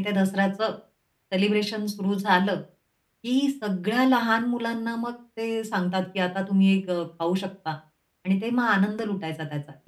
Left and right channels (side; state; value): both; identical; correlation 1.00